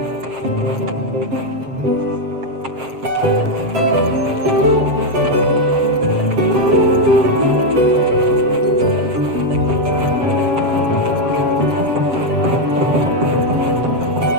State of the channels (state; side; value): late; left; 7.5 ms